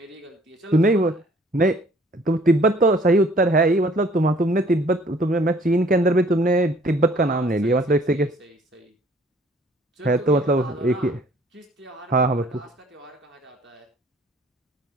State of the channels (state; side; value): normal; both; correlation 0.57